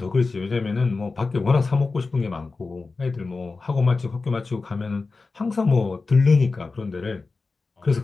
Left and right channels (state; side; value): quieter; right; 4.0 dB